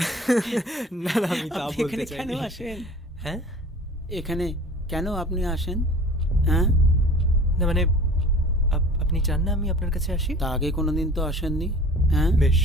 না না, আমি তা বলতে চাই। কেন আসেন? হ্যাঁ, এখানে কেন আপনি আসেন? হ্যাঁ, না মানে আপনি চান না আমি আপনার কাছে আসি? তা আগে কোনোদিন তো আসেননি। হ্যাঁ, বেশ,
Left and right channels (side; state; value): both; normal; correlation 0.44